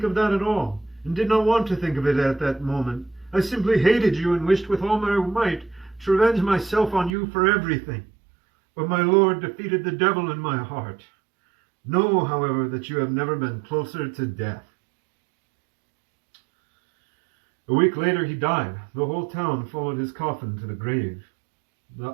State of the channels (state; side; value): drops out; left; at 7.1 s